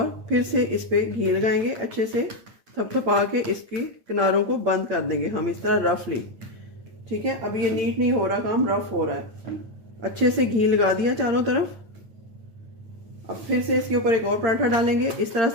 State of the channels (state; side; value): late; left; 8.8 ms